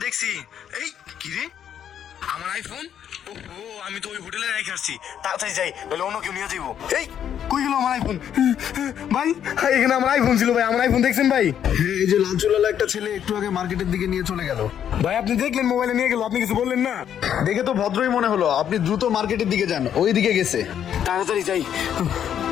দেখছি। এই কি রে, আমার আইফোন? ও আমি তো ওই হোটেলে রেখে আসছি, তাড়াতাড়ি যাই বলে অন্য কেউ নিয়ে যাইবো। এই কই গেল আমার আইফোন? ভাই এখানে আমার আইফোন ছিল ভাই, আমার আইফোন দেখছেন ভাই? এই যে লাল চুলালা একটা ছেলে একটু আগে মার্কেটের দিকে নিয়ে চলে গেল। ভাই আপনি দেখলেন মোবাইলে নিয়ে গেল, আপনি কিছু বললেন না? দেখে তো ভদ্রই মনে হলো, আপনি দ্রুত মার্কেটের দিকে যান, ওই দিকে গেছে। তাড়াতাড়ি যাই।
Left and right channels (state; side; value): quieter; right; 9.4 dB